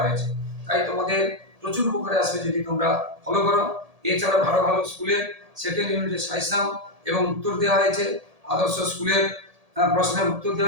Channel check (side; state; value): left; late; 1.8 ms